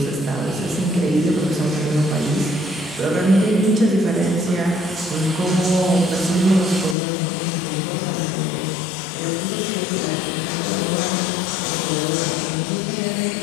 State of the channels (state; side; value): drops out; right; at 7.0 s